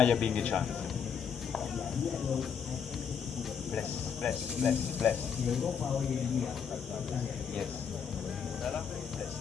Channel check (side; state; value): right; quieter; 7.1 dB